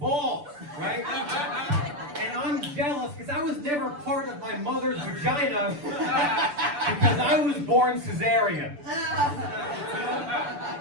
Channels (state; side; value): late; left; 6.8 ms